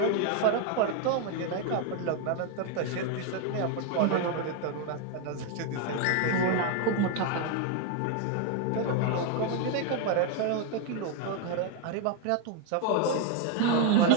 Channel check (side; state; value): both; different; correlation 0.01